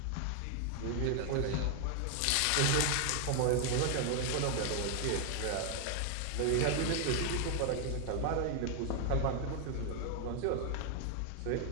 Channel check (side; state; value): both; different; correlation 0.00